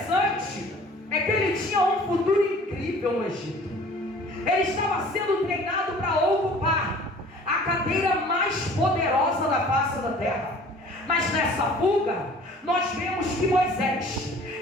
é que ele tinha um futuro incrível no Egito. Ele estava sendo treinado para ocupar a cadeira mais poderosa da face da terra. Mas nessa fuga, nós vemos que Moisés,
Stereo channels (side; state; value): both; normal; correlation 0.49